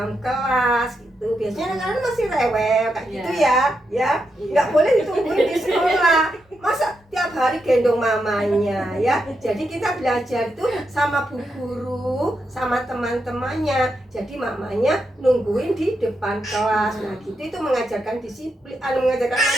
kelas gitu. Biasanya anak-anak masih rewel kayak gitu ya. Nggak boleh ditungguin di sekolah. Masa tiap hari gendong mamanya ya. Jadi kita belajar tuh sama bu guru, sama teman-temannya. Jadi mamanya nungguin di depan kelas. Nah gitu itu mengajarkan disiplin, mengajarkan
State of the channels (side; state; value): both; normal; correlation 0.84